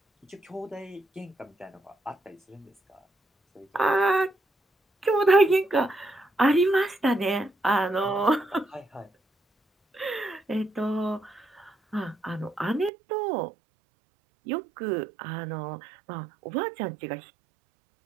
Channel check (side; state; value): left; drops out; at 12.9 s